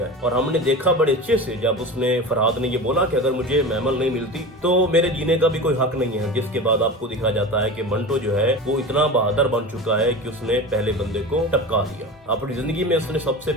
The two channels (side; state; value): both; normal; correlation 0.30